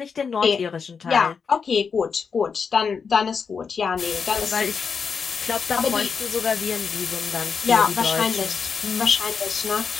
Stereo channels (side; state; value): right; quieter; 5.8 dB